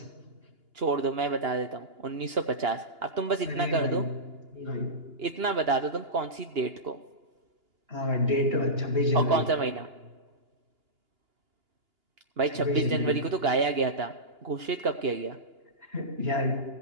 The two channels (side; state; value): left; late; 2.9 ms